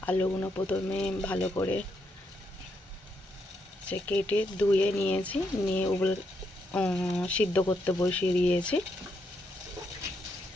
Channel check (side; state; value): both; normal; correlation 0.79